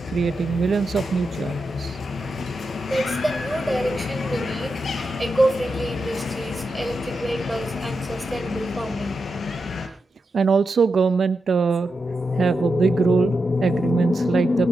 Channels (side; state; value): both; normal; correlation 0.88